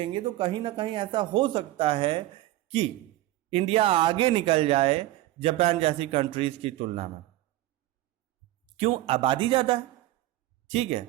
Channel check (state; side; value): quieter; left; 16.2 dB